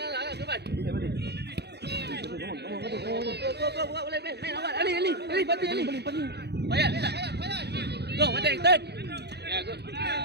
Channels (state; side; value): late; left; 0.48 ms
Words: Boleh main awal. Ali, Fatih. Bayar. Go, Fatih, turn. Ya, good.